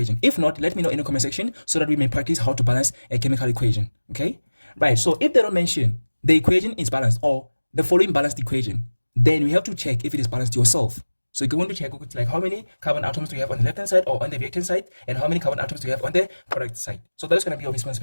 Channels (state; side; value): inverted; both; correlation -1.00